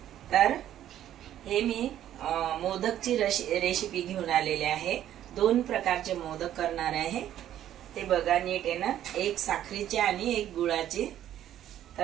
तर हे मी मोदकची रेसिपी घेऊन आलेली आहे। दोन प्रकारचे मोदक करणार आहे, ते बघा नीट आहे ना। एक साखरेचे आणि एक गुळाचे।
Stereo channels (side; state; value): left; quieter; 11.7 dB